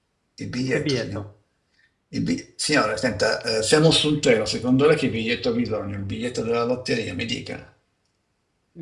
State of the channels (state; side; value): identical; both; correlation 1.00